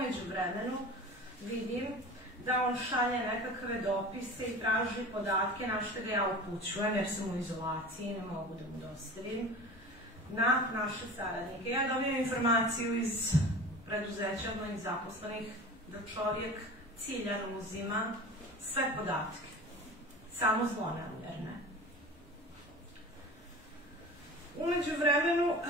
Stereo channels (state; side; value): normal; both; correlation 0.36